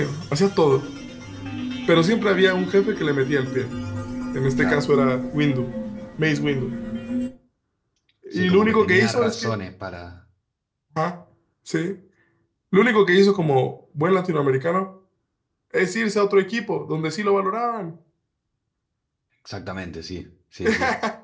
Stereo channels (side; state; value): both; identical; correlation 1.00